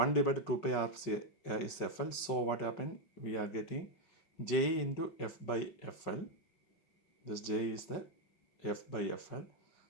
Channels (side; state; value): right; late; 5.4 ms